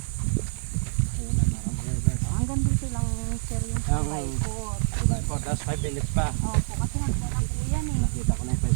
Hanggang dito lang sir yung sabay po. Tapos 5 minutes pa. Opo, kasi naglalaki po yan eh. Nakita ko na yung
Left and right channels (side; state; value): left; silent; 56 dB below the other